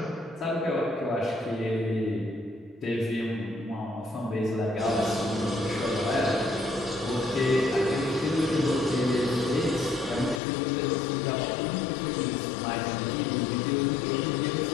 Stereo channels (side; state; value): right; drops out; at 10.4 s